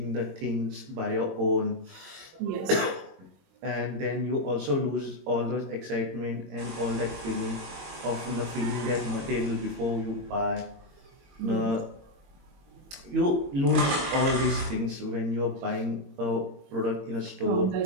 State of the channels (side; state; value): left; late; 22 ms